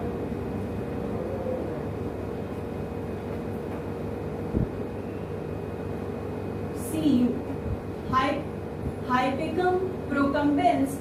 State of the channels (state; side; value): identical; both; correlation 1.00